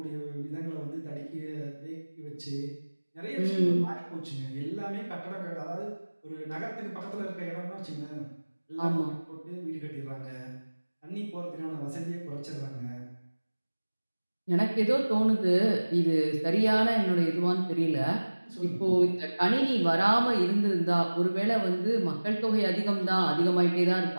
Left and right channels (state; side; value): inverted; both; correlation -1.00